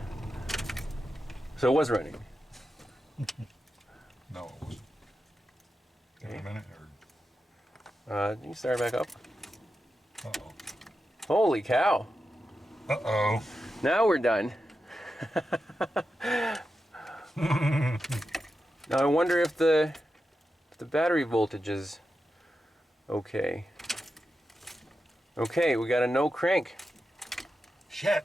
it was running? No, it wasn't. Give it a minute, or... You can start back up. Uh-oh. Holy cow. Uh-oh. Now we're done. Now I wonder if the battery voltage is okay. Okay, we got a no crank.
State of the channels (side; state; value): both; normal; correlation 0.90